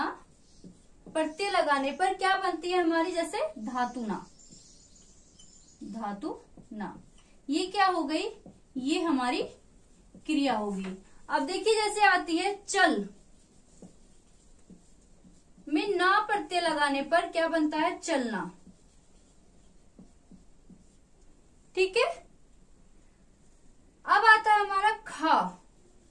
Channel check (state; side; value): identical; both; correlation 1.00